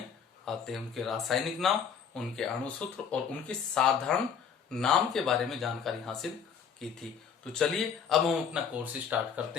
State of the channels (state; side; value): quieter; right; 7.0 dB